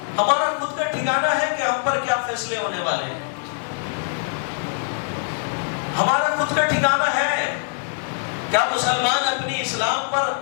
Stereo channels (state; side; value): silent; right; 63 dB below the other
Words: ہمارا خود کا ٹھکانہ ہے کہ ہم پر کیا فیصلے ہونے والے ہیں؟ ہمارا خود کا ٹھکانہ ہے؟ کیا مسلمان اپنی اسلام پر